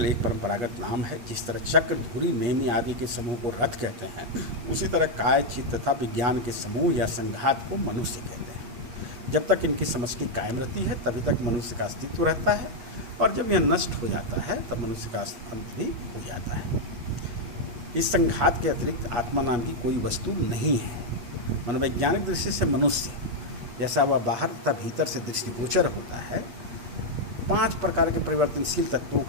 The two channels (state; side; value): late; left; 8.5 ms